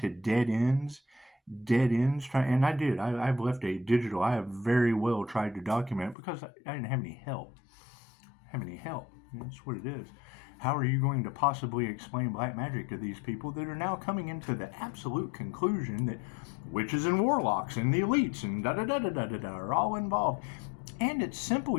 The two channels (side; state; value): right; drops out; at 6.2 s